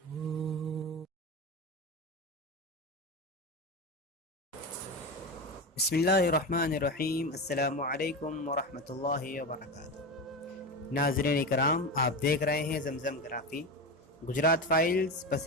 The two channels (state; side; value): normal; both; correlation 0.21